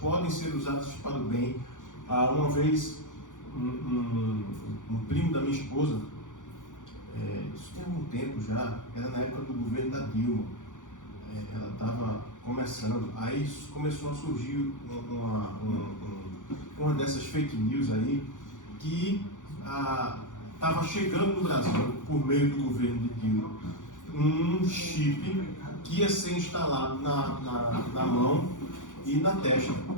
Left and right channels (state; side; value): late; right; 0.87 ms